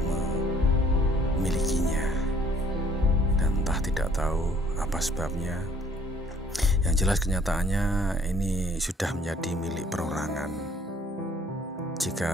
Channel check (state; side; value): normal; both; correlation 0.59